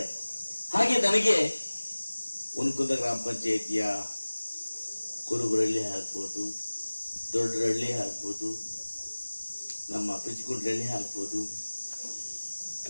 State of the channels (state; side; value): inverted; both; correlation -1.00